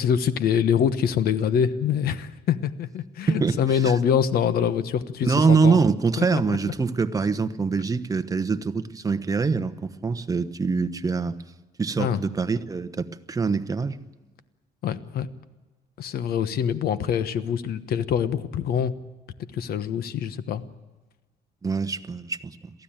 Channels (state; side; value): normal; both; correlation 0.58